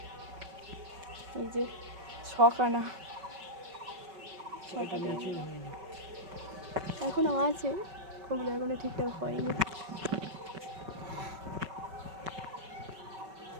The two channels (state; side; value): late; left; 5.3 ms